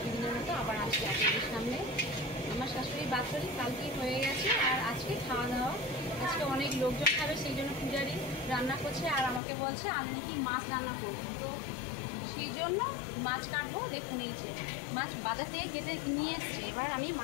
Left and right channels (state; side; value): drops out; right; at 9.4 s